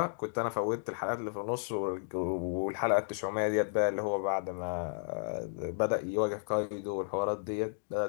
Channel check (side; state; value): right; silent; digital silence